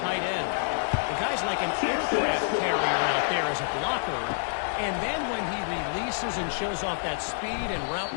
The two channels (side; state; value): right; silent; digital silence